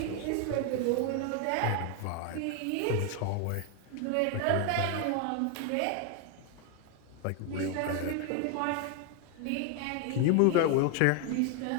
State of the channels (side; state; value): both; different; correlation 0.01